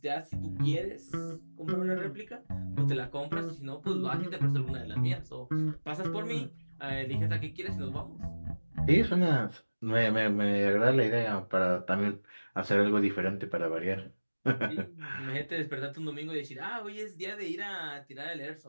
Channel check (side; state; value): both; inverted; correlation -1.00